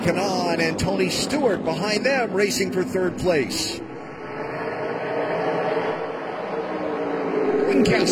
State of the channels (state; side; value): identical; both; correlation 1.00